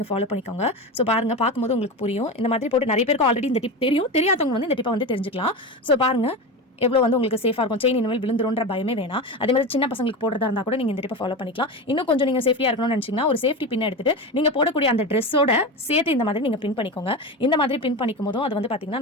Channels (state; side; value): normal; both; correlation 0.23